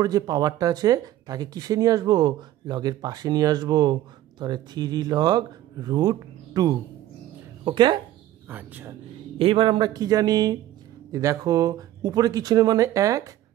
যে পাওয়ারটা আছে তাকে কিসে নিয়ে আসবো, লগের পাশে নিয়ে আসবো, তাহলে 3 লগ √2। ওকে, আচ্ছা এইবার আমরা কি জানি, দেখো উপরে কিছু নেই মানে 1,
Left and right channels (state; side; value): quieter; left; 13.7 dB